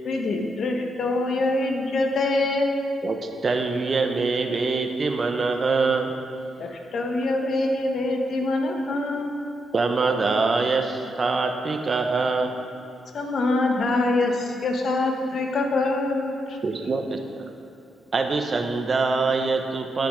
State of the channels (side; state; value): both; normal; correlation 0.81